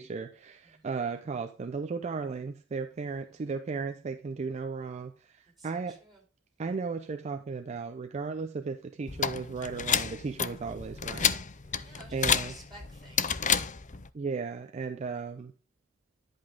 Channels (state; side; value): normal; both; correlation 0.15